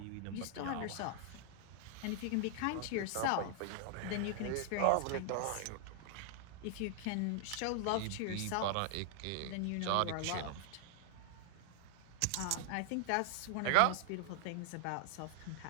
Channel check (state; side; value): different; both; correlation 0.00